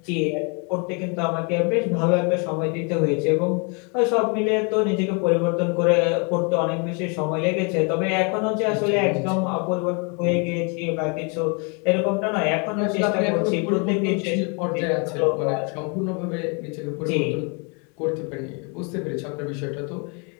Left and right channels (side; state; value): right; quieter; 34.6 dB